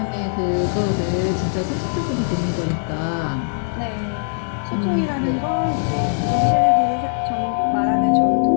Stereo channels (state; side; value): silent; right; digital silence